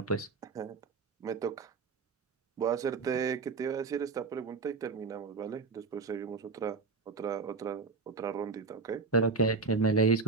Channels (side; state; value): left; quieter; 4.6 dB